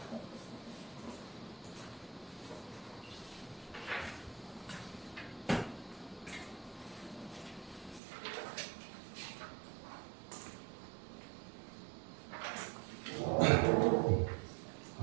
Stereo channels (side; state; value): left; drops out; at 8.0 s